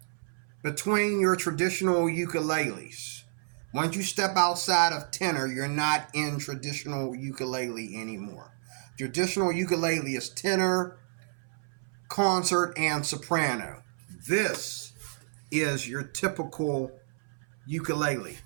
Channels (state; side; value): silent; left; 58 dB below the other